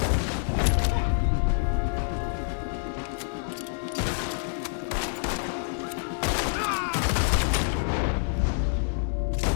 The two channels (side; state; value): right; silent; digital silence